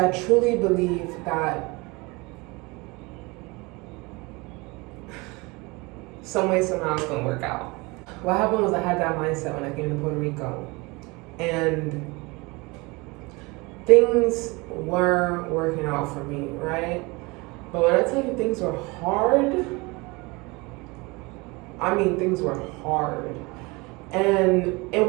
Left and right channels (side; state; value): left; quieter; 25.4 dB